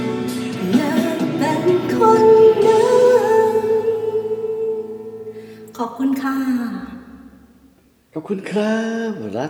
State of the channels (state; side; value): identical; both; correlation 1.00